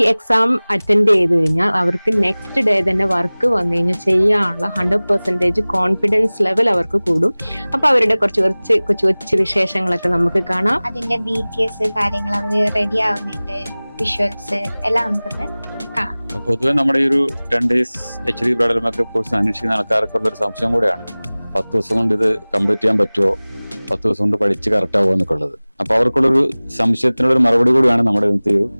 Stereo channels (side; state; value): both; inverted; correlation -1.00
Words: എക്സാം അറ്റൻഡ് ചെയ്ത് കഴിഞ്ഞാൽ അവർക്ക് നെക്സ്റ്റ് ഡേ തന്നെ വർക്ക് വന്നു കഴിഞ്ഞാൽ ചെയ്യാനുള്ള 100% കോൺഫിഡൻസ് ലെവൽ അവർക്ക് കൂടും. അപ്പൊ അവരുടെ കുറച്ച് വിശേഷങ്ങളൊക്കെ നമുക്ക് കാണാം. അതിന്റെ BTS കാര്യങ്ങൾ, അവർ റെഡി ആവുന്നതിന്റെ വിഷ്വൽസ് എല്ലാം നമുക്കൊന്ന് കാണാം. പൊതുവെ നമ്മുടെ ഈ ഒരു 10 days HD bridal makeup course അന്വേഷിക്കുന്ന ആൾക്കാർക്കുള്ള ഒരു സംശയം കൂടെയാണ്, 10 ദിവസം കൊണ്ട് ഇത് കംപ്ലീറ്റ് ചെയ്യാൻ പറ്റുമോ, 10 ദിവസം കൊണ്ട് പഠിച്ച് കറക്റ്റ് ആവുമോ എന്നൊക്കെ ഉള്ളത്. അപ്പൊ അവർക്കുള്ളൊരു സംശയത്തിനുള്ള ഒരു മറുപടി കൂടിയാണ് നമ്മുടെ ഇന്നത്തെ ഒരു